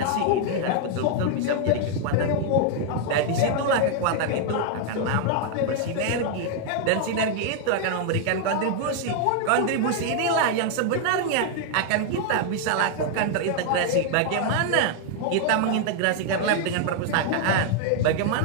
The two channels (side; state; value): both; different; correlation 0.00